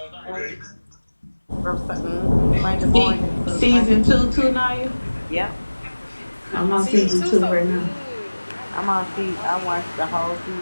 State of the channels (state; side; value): inverted; both; correlation -1.00